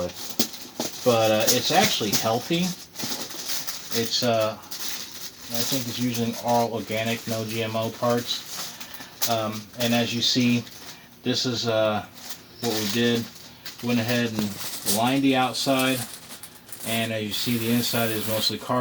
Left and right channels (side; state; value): both; identical; correlation 1.00